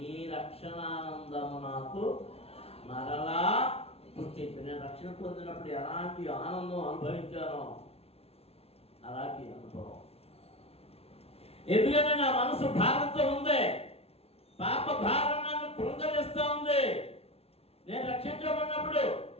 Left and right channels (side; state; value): right; late; 0.29 ms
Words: రక్షణానందము నాకు మరలా పుట్టించు. నేను రక్షణ పొందినప్పుడు ఎలాంటి ఆనందం అనుభవించానో అలాంటి అనుభవం. ఎందుకంటే నా మనసు భారంతో ఉంది, పాప భారం నన్ను కృంగరిస్తూ ఉంది. నేను రక్షించబడినప్పుడు